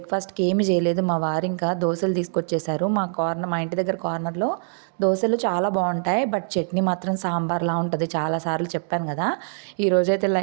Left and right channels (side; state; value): left; silent; 63 dB below the other